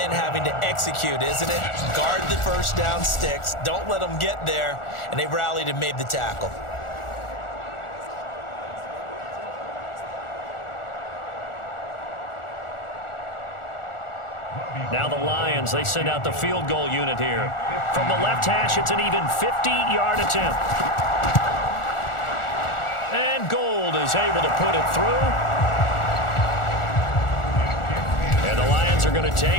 having to execute, isn't it? Guard the first down sticks. Don't let them get there. And they rallied and made the tackle. Now the Lions, they send out the field goal unit here. From the left hash, it's an even 50-yard attempt. And Gold is able to put it through. And the Lions are going to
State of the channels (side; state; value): right; late; 1.4 ms